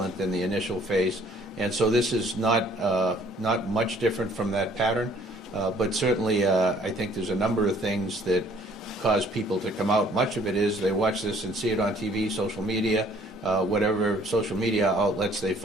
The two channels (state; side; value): normal; both; correlation 0.58